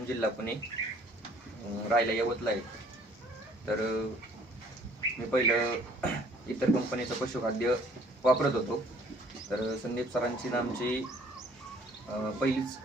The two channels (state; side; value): normal; both; correlation 0.57